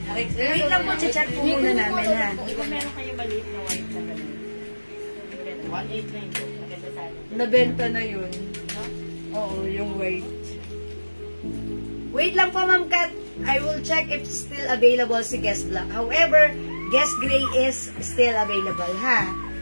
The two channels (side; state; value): both; inverted; correlation -1.00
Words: Okay, wait lang po, check po muna namin, ha? Kung meron kayo maliit na white na gano'n. 1.8 na yun. Maganda sana. Nabenta na yun. Oo, yung white. Wait lang po, Ma'am Kat. I will check if still available si Guest Black. However, Guest Gray is still available, ha?